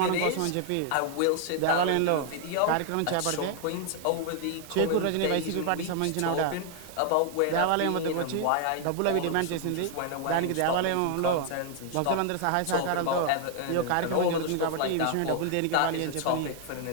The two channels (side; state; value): both; different; correlation 0.00